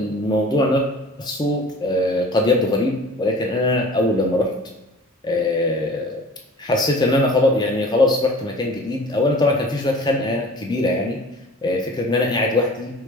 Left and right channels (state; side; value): normal; both; correlation 0.44